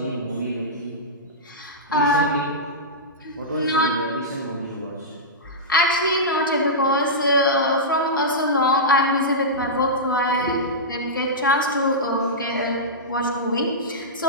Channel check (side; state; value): both; normal; correlation -0.14